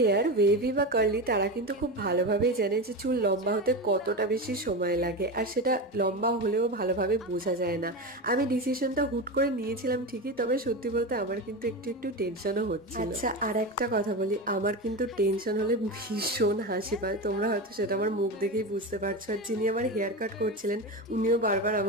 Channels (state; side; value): normal; both; correlation 0.21